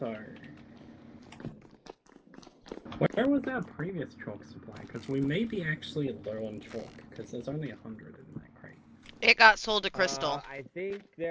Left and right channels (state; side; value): identical; both; correlation 1.00